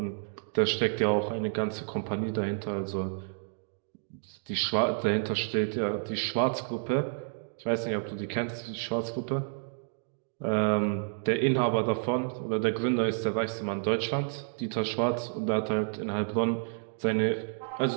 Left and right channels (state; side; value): silent; left; digital silence